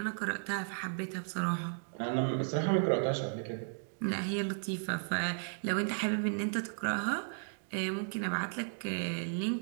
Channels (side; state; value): left; silent; digital silence